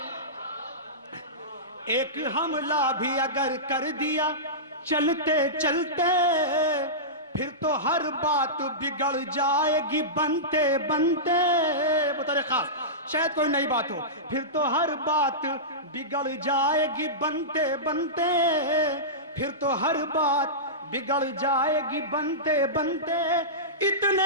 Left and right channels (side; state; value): both; normal; correlation -0.17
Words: ایک حملہ بھی اگر کر دیا چلتے چلتے, پھر تو ہر بات بگڑ جائے گی بنتے بنتے. بطور خاص شاید کوئی نئی بات ہو. پھر تو ہر بات بگڑ جائے گی بنتے بنتے, پھر تو ہر بات بگڑ جائے گی بنتے بنتے.